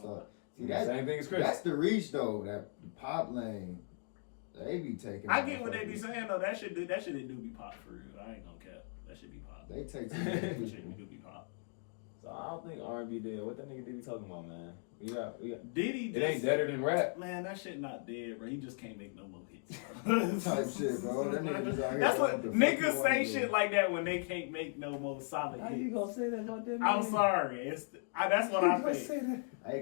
See, Same thing as Chris. That's the reach though. That pop lane, they be taking. I get what they be motherfuckers. saying though. That shit do be pop for real. I ain't gonna cap. That should be pop. They take some That shit people. do be pop. So I don't think R&B dead. What that nigga Diddy talking about, man? We got. Diddy It ain't deader than rap. Man, that shit not dead, bro. He just can't make no more hits. Type shit, bro. That nigga just out here That's doing what the fuck niggas he say wanna shit do. like that when they can't make no more solid How you hits. gonna say that about that? I'm man? sorry. That's what I think. Hey,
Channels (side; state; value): right; silent; 53 dB below the other